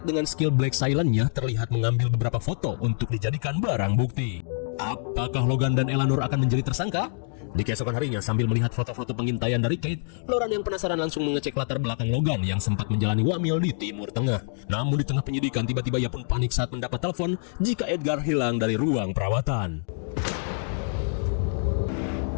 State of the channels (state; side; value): silent; right; digital silence